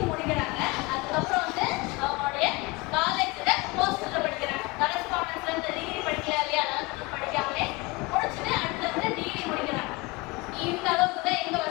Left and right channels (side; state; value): right; quieter; 24.2 dB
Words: முடிக்கிறாங்க அதுக்கப்புறம் வந்து அவங்களுடைய காலேஜ்ல போஸ்டர்ல படிக்கிறாங்க கரஸ்பாண்டன்ஸ்ல இருந்து டிகிரி படிக்கல இல்லையா அதெல்லாம் படிக்காமலே முடிச்சுட்டு அடுத்து வந்து டிகிரி முடிக்கிறாங்க இந்த அளவுக்கு தான் எங்க